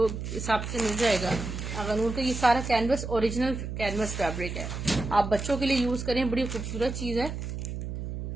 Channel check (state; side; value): noise; right; hum, 6 dB below the sound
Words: हिसाब से मिल जाएगा आगा नूर का। ये सारा कैनवस, ओरिजिनल कैनवस फैब्रिक है, आप बच्चों के लिए यूज करें, बड़ी खूबसूरत चीज है।